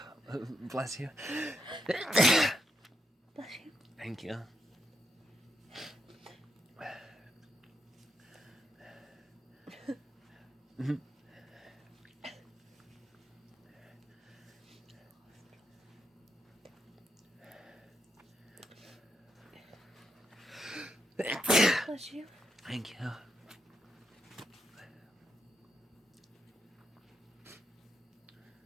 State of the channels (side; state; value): both; normal; correlation 0.81